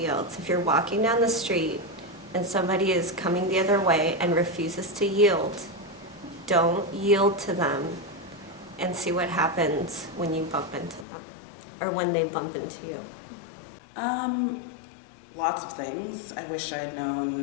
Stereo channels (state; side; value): drops out; right; at 11.1 s